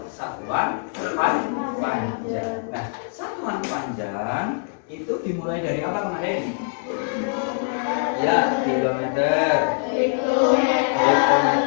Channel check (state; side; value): silent; right; digital silence